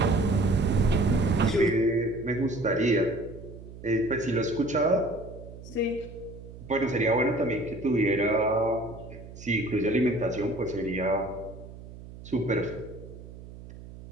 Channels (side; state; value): right; noise; hum, 15 dB below the sound